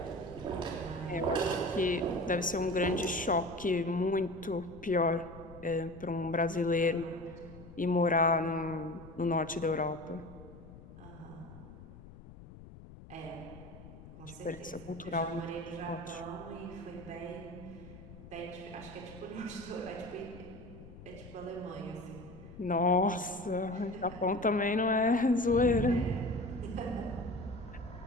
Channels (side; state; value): left; noise; rumble, 17 dB below the sound